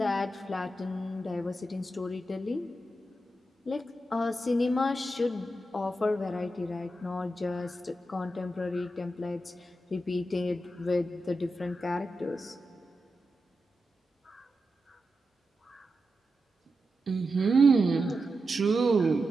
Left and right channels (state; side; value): normal; both; correlation 0.89